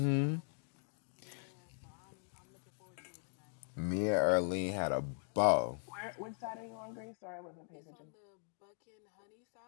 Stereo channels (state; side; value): silent; right; 51 dB below the other